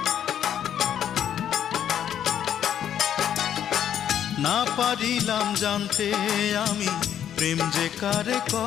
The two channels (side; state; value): right; quieter; 9.8 dB